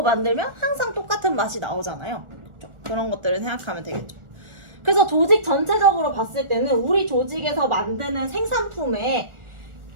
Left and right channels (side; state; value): left; late; 1.4 ms